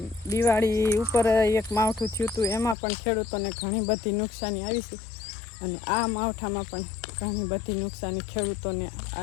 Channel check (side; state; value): right; drops out; at 2.8 s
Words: દિવાળી ઉપર એક માવઠું થયું હતું એમાં પણ ખેડૂતોને ઘણી બધી નુકસાની આવી છે. અને આ માવઠામાં પણ ઘણી બધી નુકસાની ખેડૂતોને